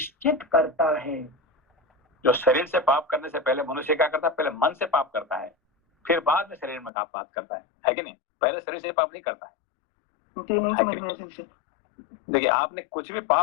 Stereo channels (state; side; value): drops out; right; at 6.9 s